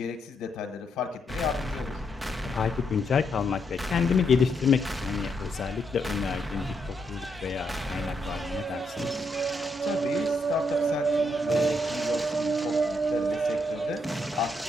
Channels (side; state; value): both; normal; correlation 0.78